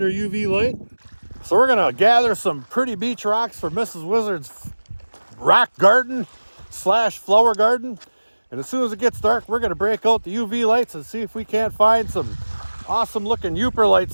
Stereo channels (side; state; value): both; inverted; correlation -1.00